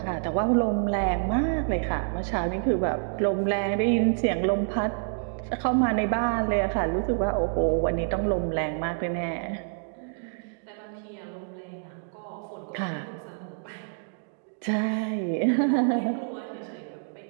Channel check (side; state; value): left; silent; digital silence